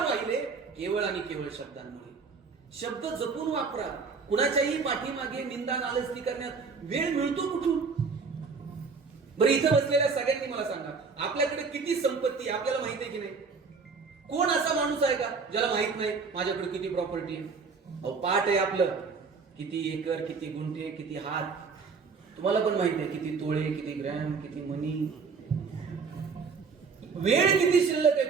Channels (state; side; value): quieter; left; 5.0 dB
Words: केवळ आणि केवळ शब्दांमुळे. शब्द जपून वापरा. कुणाच्याही पाठीमागे निंदा नालस्ती करण्यात वेळ मिळतो कुठून? बरं, इथं बसलेल्या सगळ्यांनी मला सांगा, आपल्याकडे किती संपत्ती आपल्याला माहिती आहे की नाही? कोण असा माणूस आहे का ज्याला माहित नाही माझ्याकडे किती प्रॉपर्टी आहे? अहो, पाठ आहे आपलं, किती एकर, किती गुंठे, किती हात. तुम्हाला पण माहिती आहे किती तोळे, किती ग्रॅम, किती मनी. वेळ किती शिल्लक आहे